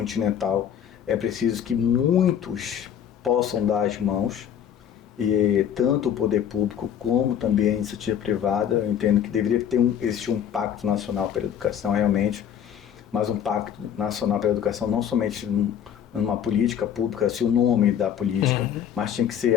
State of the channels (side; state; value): right; quieter; 9.2 dB